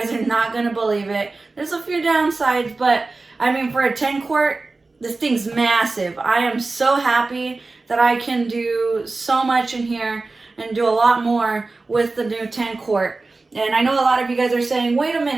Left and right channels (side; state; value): left; quieter; 3.6 dB